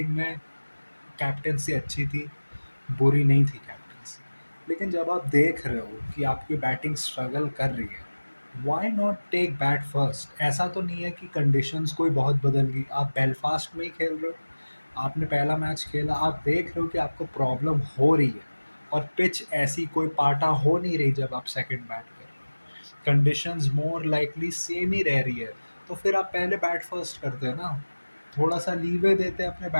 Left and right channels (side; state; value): both; inverted; correlation -1.00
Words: में कैप्टेंसी अच्छी थी, बुरी नहीं थी कैप्टेंसी। लेकिन जब आप देख रहे हो कि आपकी बैटिंग स्ट्रगल कर रही है, why not take bat first? ऐसा तो नहीं है कि कंडीशंस कोई बहुत बदल गई। आप बेलफास्ट में ही खेल रहे हो, आपने पहला मैच खेला, आप देख रहे हो कि आपको प्रॉब्लम हो रही है और पिच ऐसी कोई पाटा हो नहीं रही जब आप सेकंड बैट कर रहे हो, कंडीशंस मोर लाइकली सेम ही रह रही है। तो फिर आप पहले बैट फर्स्ट करते हैं ना, थोड़ा सा लीवे देते हैं अपने